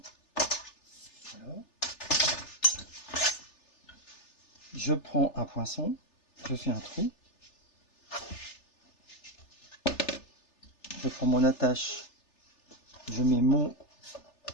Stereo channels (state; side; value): late; right; 3.3 ms